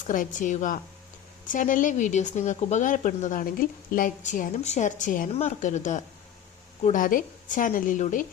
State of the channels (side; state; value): right; quieter; 9.7 dB